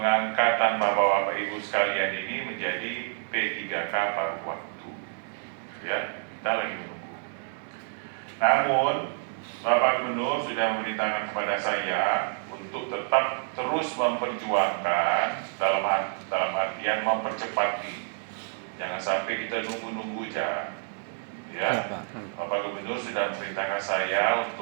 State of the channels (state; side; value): silent; left; digital silence